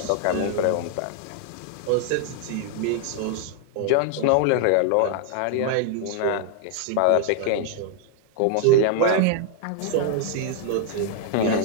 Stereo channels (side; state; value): both; different; correlation 0.00